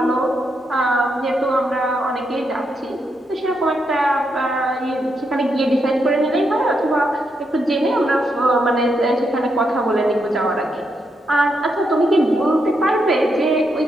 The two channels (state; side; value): normal; both; correlation 0.81